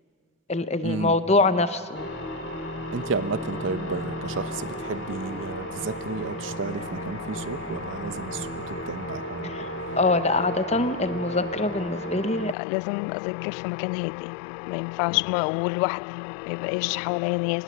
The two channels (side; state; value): right; drops out; at 12.6 s